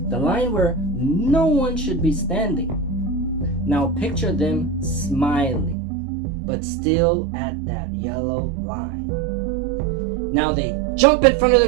The line where no one should be standing. Now picture them smiling, but still at that yellow line. Now they jump in front of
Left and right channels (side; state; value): left; drops out; at 5.8 s